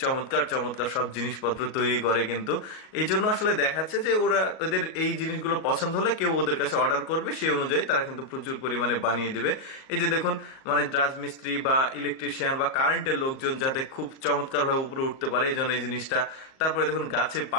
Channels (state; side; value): late; right; 38 ms